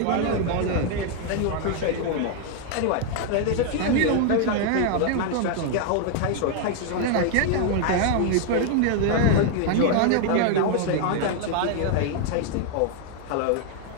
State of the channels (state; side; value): different; both; correlation 0.00